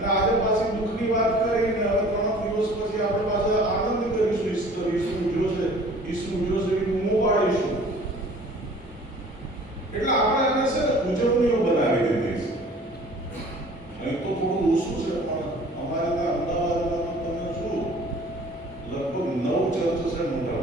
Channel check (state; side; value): normal; both; correlation 0.48